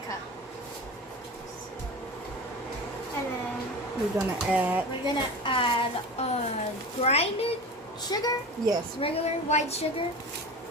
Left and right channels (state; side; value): normal; both; correlation 0.31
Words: cup. And then We're going to add... we're gonna add grinded sugar, Yes. regular white sugar,